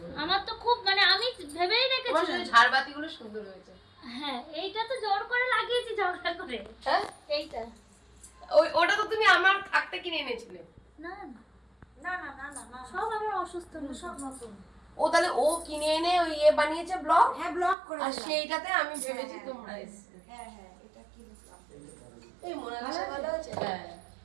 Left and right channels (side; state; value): left; drops out; at 17.8 s